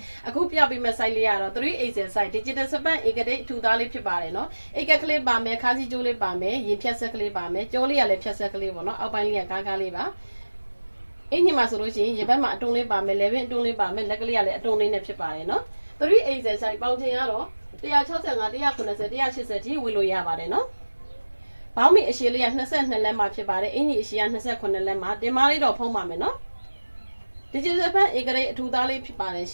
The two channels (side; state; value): both; inverted; correlation -1.00